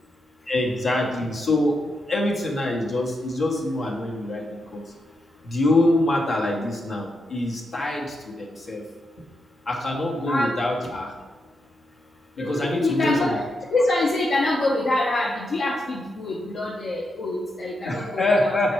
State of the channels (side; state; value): both; normal; correlation 0.84